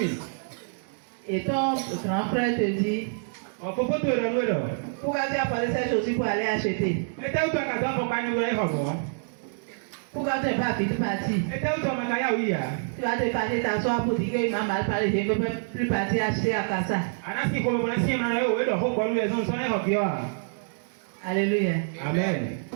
Et ton grand frère te dit, pourquoi tu as posé cette chose pour aller acheter? Pourquoi tu n'es pas vite parti? Tu vas te partir t'asseoir pour dire qu'il m'a mal parlé, je ne peux plus partir acheter à Kassa. Alléluia. Amen.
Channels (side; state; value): left; silent; digital silence